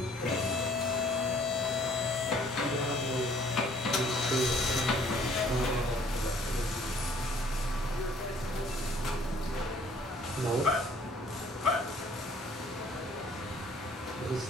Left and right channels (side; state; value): both; normal; correlation 0.58